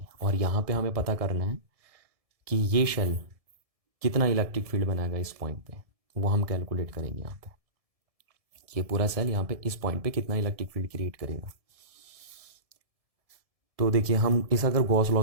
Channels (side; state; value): left; late; 1.7 ms